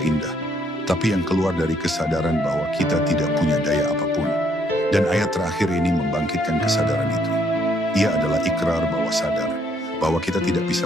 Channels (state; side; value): normal; both; correlation 0.69